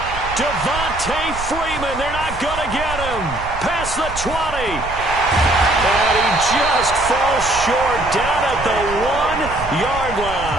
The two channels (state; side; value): noise; right; rumble, 11 dB below the sound